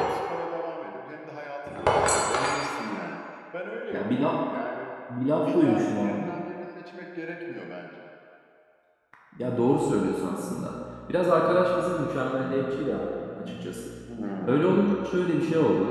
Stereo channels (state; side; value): identical; both; correlation 1.00